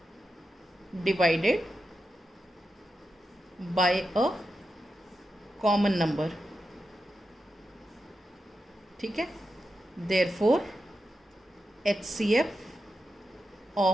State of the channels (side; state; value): both; normal; correlation 0.89